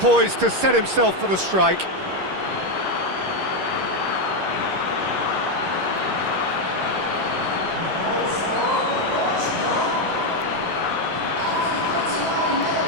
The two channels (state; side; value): late; left; 11 ms